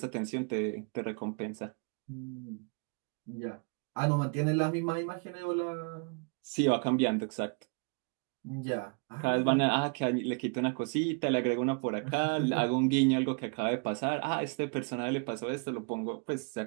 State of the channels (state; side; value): quieter; left; 35.9 dB